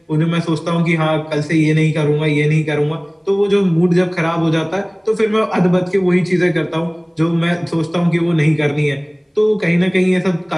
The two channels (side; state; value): both; identical; correlation 1.00